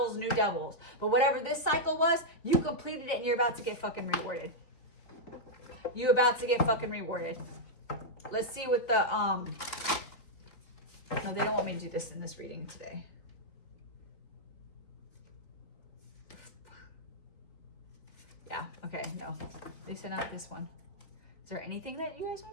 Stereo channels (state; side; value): late; right; 3.8 ms